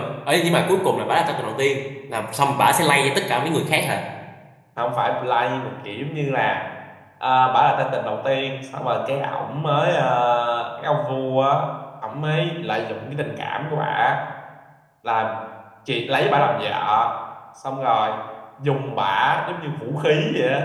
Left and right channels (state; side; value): identical; both; correlation 1.00